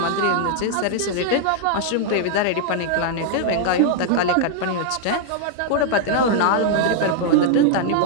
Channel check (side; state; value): both; different; correlation 0.00